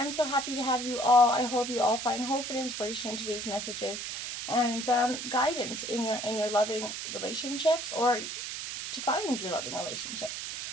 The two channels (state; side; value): noise; right; hiss, 6 dB below the sound